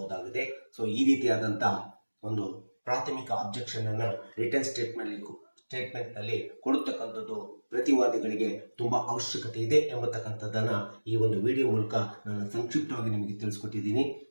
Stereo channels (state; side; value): inverted; both; correlation -1.00